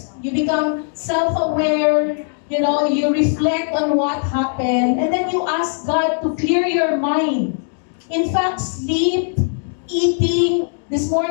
You become self-aware, you reflect on what happened, and then you ask God to clear your mind. In fact, sleep, eating. This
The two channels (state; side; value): silent; right; 61 dB below the other